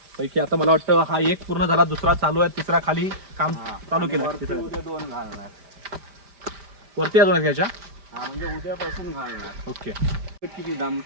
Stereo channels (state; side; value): late; left; 5.0 ms